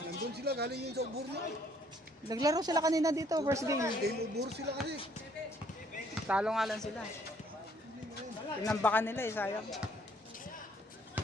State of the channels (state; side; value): normal; both; correlation 0.64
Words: Nandun sila, galing yun sa Uburno. Naglaro sila kanina dito, first game. Game Ubur sila kasi. Talo nga lang sila. Pinambakan nila eh, sayang.